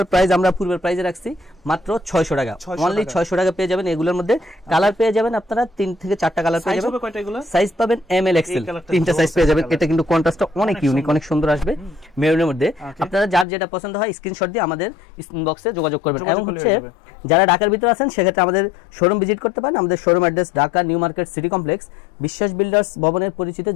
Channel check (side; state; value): right; drops out; at 13.5 s